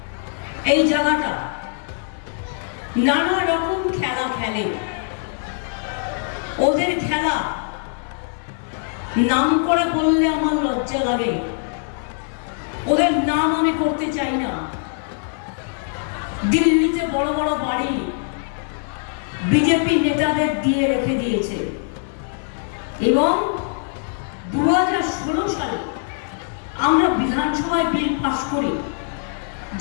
এই জায়গাটা নানা রকম খেলা খেলে। ওদের খেলা নাম করে বললে আমার লজ্জা লাগে। ওদের নাম আমি করতে চাই না। দিল্লিতে বড় বড় বাড়ি বিজেপি নেতাদের দিয়ে রেখে দিয়েছে এবং 2016 সালে আমরা বিধানসভায় বিল পাস করি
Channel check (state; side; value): silent; right; 57 dB below the other